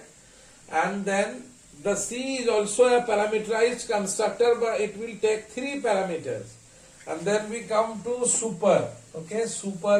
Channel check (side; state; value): both; identical; correlation 1.00